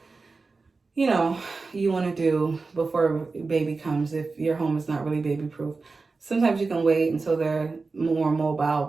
you know, you want to do before baby comes if your home is not really baby-proof. Sometimes you can wait until they're more mobile,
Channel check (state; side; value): quieter; left; 4.0 dB